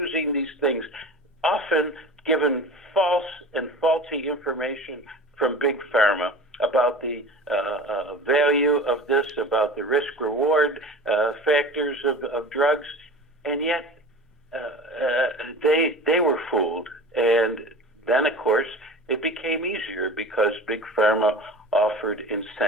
these things, often given false and faulty information from Big Pharma about the value of this, about the risk-reward factors of drugs, and yet they were fooled. And then, of course, it became easier because Big Pharma offered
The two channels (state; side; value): normal; both; correlation 0.36